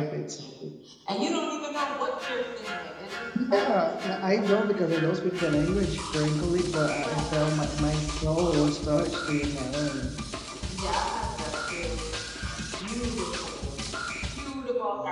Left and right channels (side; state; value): both; identical; correlation 1.00